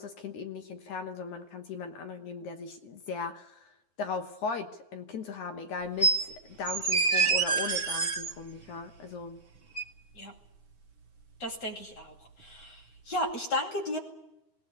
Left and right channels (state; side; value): late; right; 9.6 ms